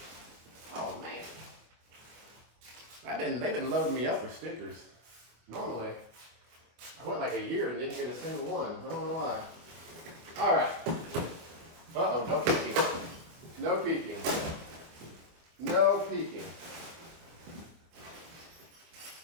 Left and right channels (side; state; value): left; late; 25 ms